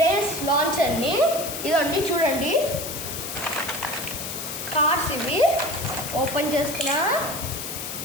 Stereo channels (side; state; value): left; noise; hiss, 6 dB below the sound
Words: లాంచర్ని. ఇదండి చూడండి, కార్స్ ఇవి ఓపెన్ చేస్తున్నా.